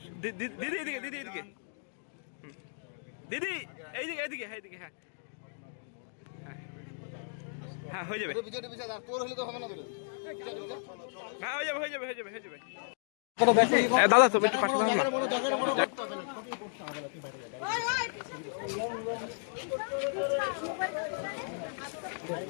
দিদি এদিকে, দিদি এদিকে, দিদি এইদিকে এইদিকে, হ্যাঁ এইদিকে, হ্যাঁ হ্যাঁ হয়ে যাবে, হ্যাঁ হয়ে যাবে, হয়ে যাবে, হয়ে যাবে, হয়ে যাবে। দাদা তুমি একটু পাশে থাকুন না।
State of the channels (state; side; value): silent; right; digital silence